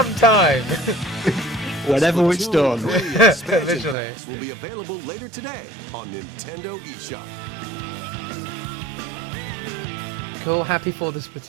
Whenever it's Splatoon done. 3 expansion Visually. packs will be available later today on Nintendo eShop. Cool, happy for the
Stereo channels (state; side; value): drops out; left; at 4.0 s